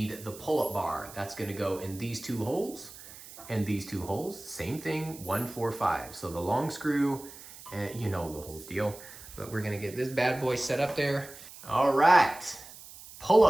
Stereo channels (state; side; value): noise; right; hiss, 17 dB below the sound